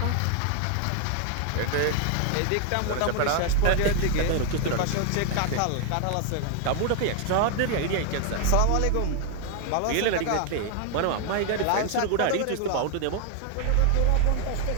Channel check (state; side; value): different; both; correlation 0.00